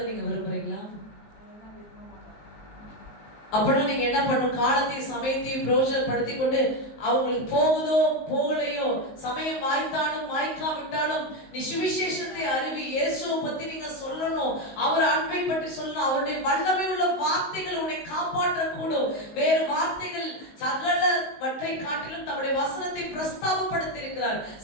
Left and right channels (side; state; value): right; late; 19 ms